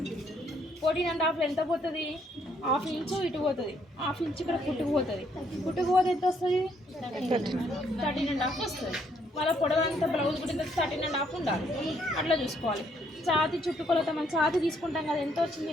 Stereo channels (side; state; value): both; normal; correlation 0.70